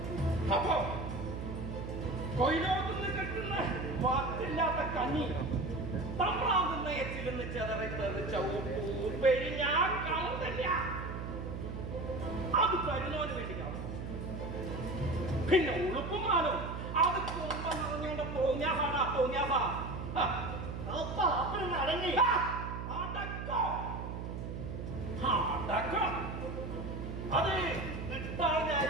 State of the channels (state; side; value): noise; right; hum, 6 dB below the sound